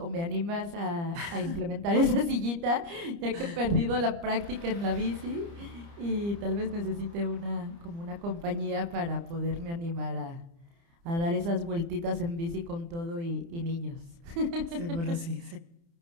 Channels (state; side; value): late; left; 30 ms